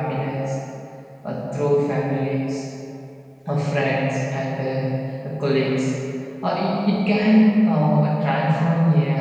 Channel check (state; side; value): identical; both; correlation 1.00